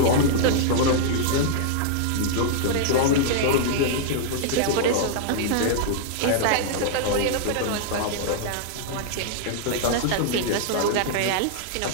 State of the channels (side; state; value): both; different; correlation -0.01